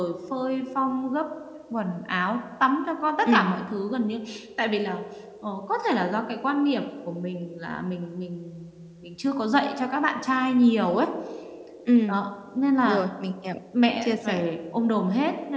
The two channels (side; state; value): both; identical; correlation 1.00